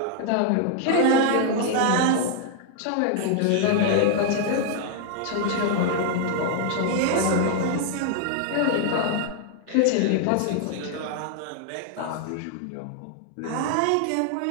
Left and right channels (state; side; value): different; both; correlation 0.00